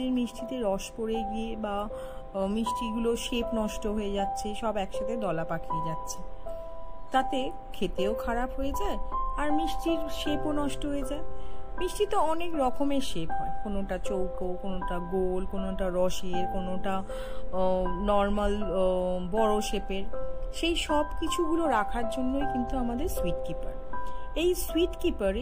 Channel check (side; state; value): both; identical; correlation 1.00